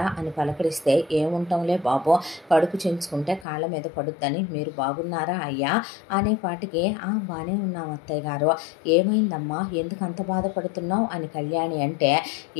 అని పలకరిస్తే ఏముంటాంలే బాబు, కడుపు చించుకుంటే కాళ్ళ మీద పడుద్దని, మీరు బాగున్నారా అయ్యా అనేపాటికి బాగానే ఉన్నాం అత్తయ్య గారు, ఏమైందమ్మా ఎందుకు అంత బాధపడుతున్నావు అని కళ్యాణి అంటే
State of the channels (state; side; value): drops out; right; at 3.5 s